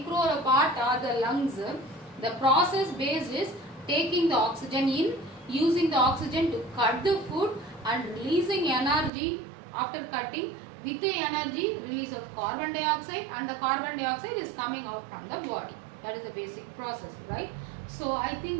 or a part or the lungs, the process base is taking the oxygen in, using the oxygen to cut the food and releasing energy after cutting. With the energy, release of carbon dioxide, and the carbon dioxide is coming out from the body. That is the basic process, right? So I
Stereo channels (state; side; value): drops out; left; at 9.1 s